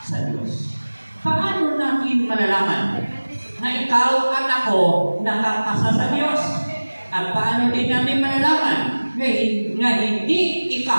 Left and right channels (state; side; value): inverted; both; correlation -1.00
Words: sa Diyos. Paano natin malalaman na ikaw at ako nakapasa sa Diyos? At paano din natin malalaman na hindi